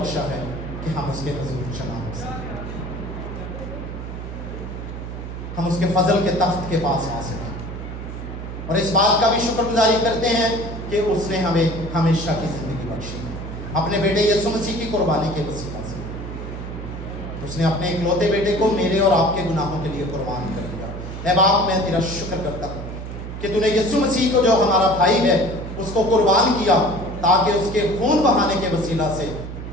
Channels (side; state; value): right; noise; hum, 8 dB below the sound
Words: है कि हम उसके हुजूर जमा हो सकें, हम उसके फजल के तख्त के पास आ सकें। और इस बात का भी शुक्रगुजारी करते हैं कि उसने हमें हमेशा की ज़िंदगी बख्शी है, अपने बेटे यीशु मसीह की कुर्बानी के वसीला से। उसने अपने इकलौते बेटे को मेरे और आपके गुनाहों के लिए कुर्बान कर दिया। ऐ बाप, मैं तेरा शुक्र करता हूँ कि तूने यीशु मसीह को, जो हमारा भाई है, उसको कुर्बान किया ताकि उसके खून बहाने के वसीला से